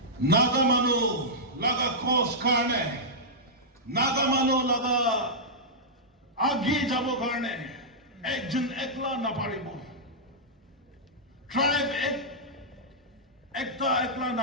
Nagamano laga kos karne, Nagamano laga আগে যাব কারণে একজন একলা না পারিব, tribe একটা একলা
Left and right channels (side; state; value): both; normal; correlation -0.11